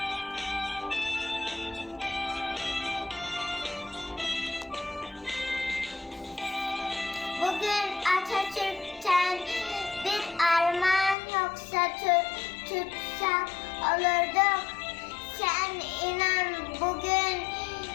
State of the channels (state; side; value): drops out; right; at 11.2 s